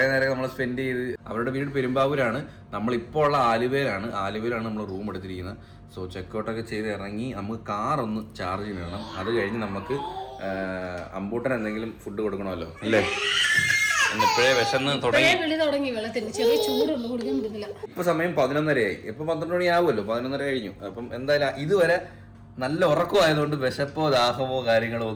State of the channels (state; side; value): identical; both; correlation 1.00